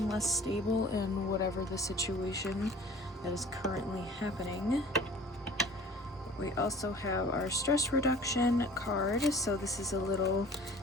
less stable in whatever the situation that is currently happening. We also have our stress reduction card. So this is a little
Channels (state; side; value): normal; both; correlation 0.47